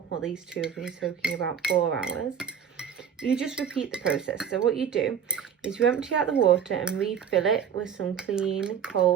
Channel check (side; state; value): left; quieter; 7.9 dB